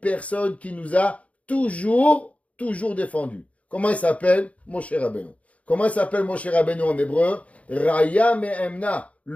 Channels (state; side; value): late; right; 0.066 ms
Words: qui nous a toujours défendus. Comment il s'appelle? Moshe Rabbeinu. Comment il s'appelle Moshe Rabbeinu en hébreu? Raya Me'emna,